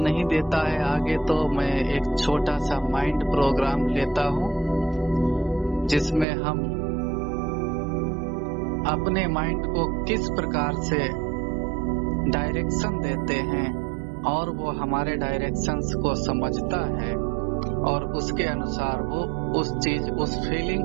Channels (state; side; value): drops out; left; at 6.2 s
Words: देता है आगे, तो मैं एक छोटा सा माइंड प्रोग्राम लेता हूं जिसमें हम अपने माइंड को किस प्रकार से डायरेक्शन देते हैं और वो हमारे डायरेक्शंस को समझता है और उसके अनुसार वो उस